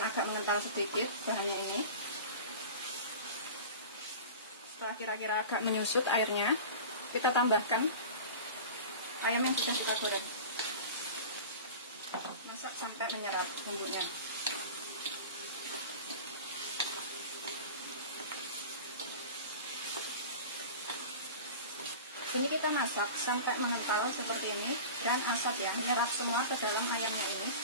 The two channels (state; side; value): inverted; both; correlation -0.35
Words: agak mengental sedikit bahannya ini. Setelah kira-kira agak menyusut airnya, kita tambahkan ayam yang sudah kita goreng. Masak sampai menyerap bumbunya. Sini kita masak sampai mengental seperti ini dan asap ya menyerap semua ke dalam ayamnya ini